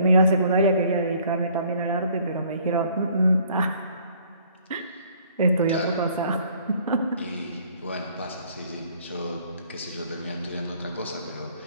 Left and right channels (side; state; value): both; inverted; correlation -0.59